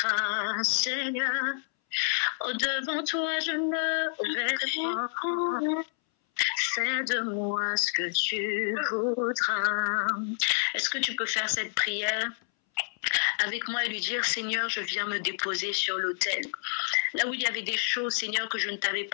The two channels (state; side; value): silent; right; 59 dB below the other